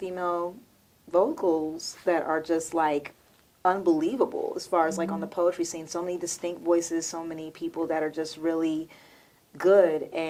vocals that are just like unbelievable as far as like on the poetry scene. So many distinct voices, so many people that are just really good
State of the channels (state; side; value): identical; both; correlation 1.00